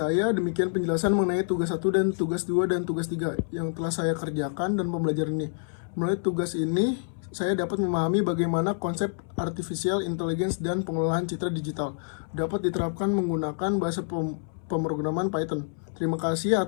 demikian penjelasan mengenai tugas 1 dan tugas 2 dan tugas 3 yang telah saya kerjakan dan pembelajaran ini. Melalui tugas ini saya dapat memahami bagaimana konsep artificial intelligence dan pengolahan citra digital dapat diterapkan menggunakan bahasa pemrograman Python. Terima kasih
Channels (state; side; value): silent; right; 60 dB below the other